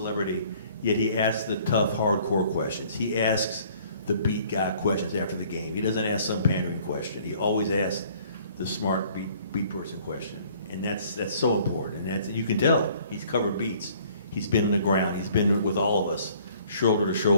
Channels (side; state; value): both; inverted; correlation -0.58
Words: yet he asks the tough, hardcore questions. He asks the beat guy questions after the game. He doesn't ask some pandering question. He always asks the smart beat person question, and that's so important. And you can tell he's covered beats. He's been on the ground. He's been with all of us, shoulder to